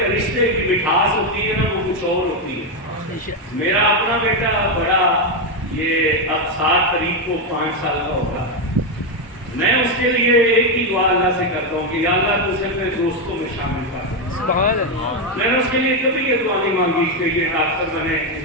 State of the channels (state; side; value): normal; both; correlation 0.06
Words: رشتے کی مٹھاس ہوتی ہے نا وہ کچھ اور ہوتی ہے۔ میرا اپنا بیٹا بڑا، یہ اب 7 تاریخ کو 5 سال کا ہوگا، میں اس کے لیے ایک ہی دعا اللہ سے کرتا ہوں کہ یا اللہ تو اسے اپنے دوستوں میں شامل کر۔ میں نے اس کے لیے کبھی یہ دعا نہیں مانگی کہ یہ ڈاکٹر بنے،